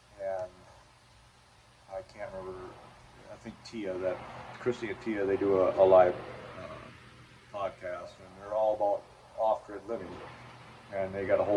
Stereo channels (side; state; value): both; identical; correlation 1.00